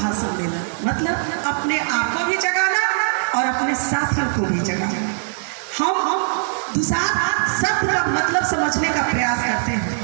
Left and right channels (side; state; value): left; silent; digital silence